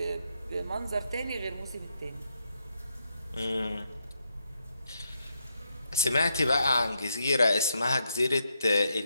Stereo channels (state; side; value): inverted; both; correlation -0.80